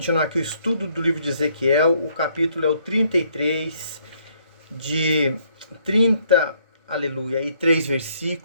aqui o estudo do livro de Ezequiel. O capítulo é o 33, de 30, aleluia, e 3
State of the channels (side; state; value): both; inverted; correlation -0.68